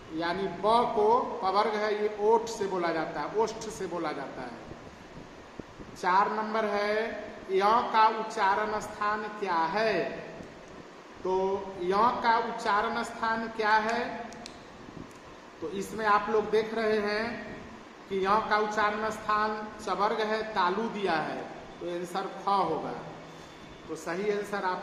यानी ब को पवर्ग है, ये ओठ से बोला जाता है, ओष्ठ से बोला जाता है। 4 नंबर है य का उच्चारण स्थान क्या है? तो य का उच्चारण स्थान क्या है? तो इसमें आप लोग देख रहे हैं कि य का उच्चारण स्थान चवर्ग है, तालु दिया है, तो आंसर ख होगा। तो सही आंसर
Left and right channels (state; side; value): identical; both; correlation 1.00